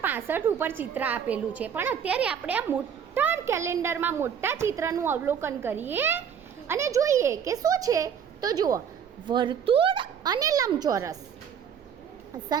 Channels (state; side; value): quieter; left; 7.9 dB